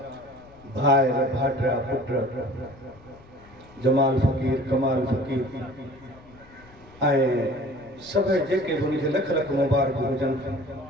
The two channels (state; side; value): noise; left; rumble, 24 dB below the sound